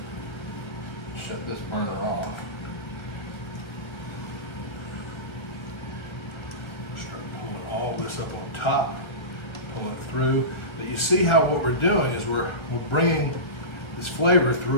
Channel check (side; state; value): right; late; 1.4 ms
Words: Shut this burner off. Start pulling all this up on top, pulling it through. But you see how what we're doing is we're bringing this flavor